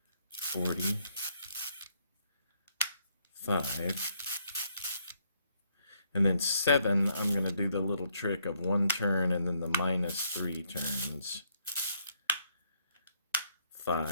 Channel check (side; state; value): both; inverted; correlation -0.71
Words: And then 7, I'm going to do the little trick of 1 turn and then the -3 turns.